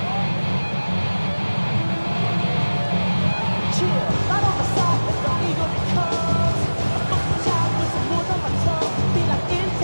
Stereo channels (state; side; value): inverted; both; correlation -1.00